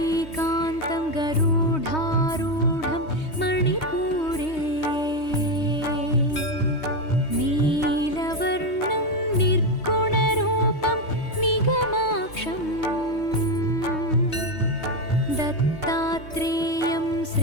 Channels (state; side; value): late; right; 3.2 ms